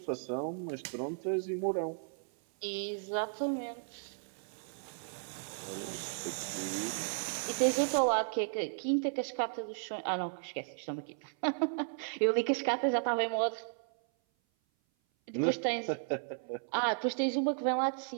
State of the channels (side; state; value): left; silent; 55 dB below the other